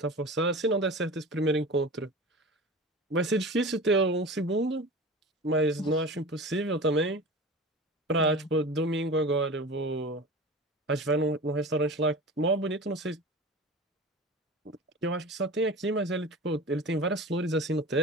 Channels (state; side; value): normal; both; correlation 0.34